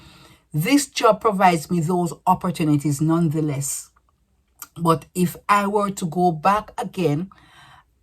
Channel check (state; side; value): identical; both; correlation 1.00